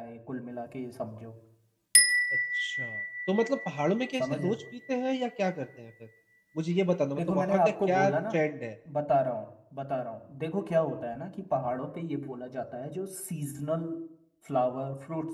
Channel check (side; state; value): both; identical; correlation 1.00